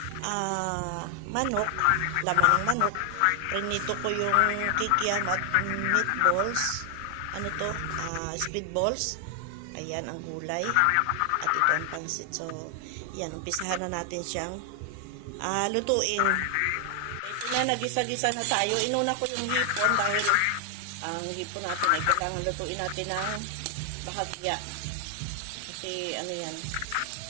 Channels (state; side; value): different; both; correlation 0.00